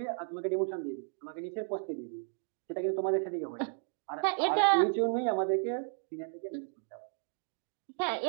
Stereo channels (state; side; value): silent; left; 55 dB below the other